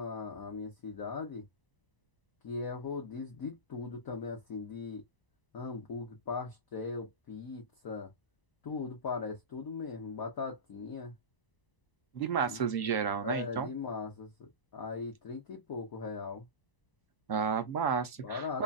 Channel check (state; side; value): late; right; 1.0 ms